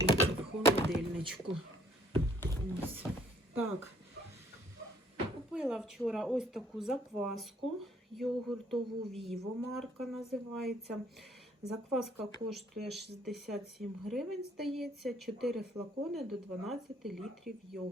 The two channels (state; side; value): normal; both; correlation 0.62